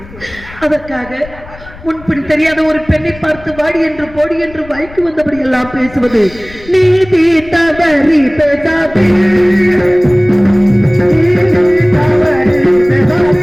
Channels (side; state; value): left; noise; rumble, 19 dB below the sound